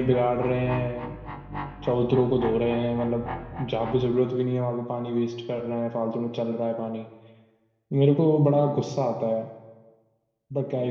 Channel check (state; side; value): identical; both; correlation 1.00